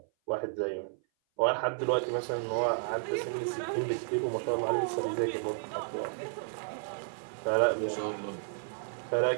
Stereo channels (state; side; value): silent; left; 56 dB below the other